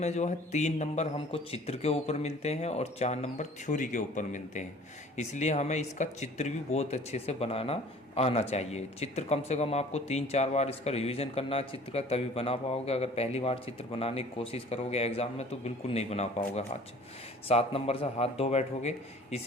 जो है 3 नंबर हमको चित्र के ऊपर मिलते हैं और 4 नंबर थ्योरी के ऊपर मिलते हैं। इसलिए हमें इसका चित्र भी बहुत अच्छे से बनाना आना चाहिए। चित्र कम से कम आपको 3-4 बार इसका रिवीजन करना है चित्र का, तभी बना पाओगे। अगर पहली बार चित्र बनाने की कोशिश करोगे एग्जाम में तो बिल्कुल नहीं बना पाओगे। हाथ 7 नंबर से हाथ धो बैठोगे।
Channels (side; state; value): both; normal; correlation 0.49